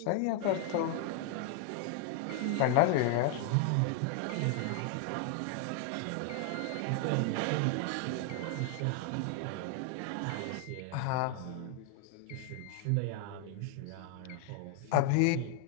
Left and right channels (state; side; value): different; both; correlation 0.00